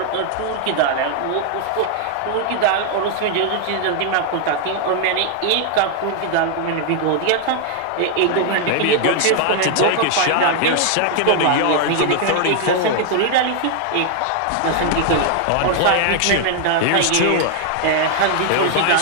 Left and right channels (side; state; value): both; different; correlation 0.00